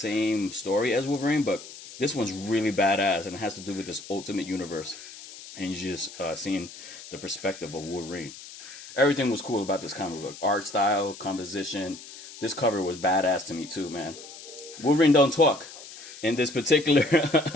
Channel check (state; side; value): noise; left; hiss, 15 dB below the sound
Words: story as Wolverine, but this one's really badass, and it has to do with this ultimate universe. And you're just seeing the perspective of Wolverine. Everything was cool about this comic book. Art style, composition. This cover was badass to me too, man. Wolverine don't talk in this particular